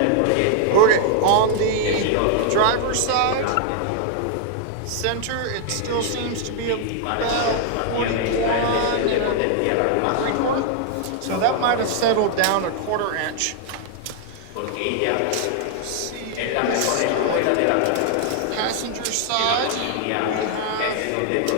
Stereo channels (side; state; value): both; different; correlation 0.00